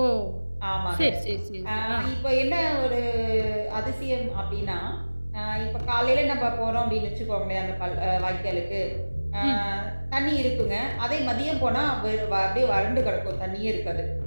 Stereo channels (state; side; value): inverted; both; correlation -1.00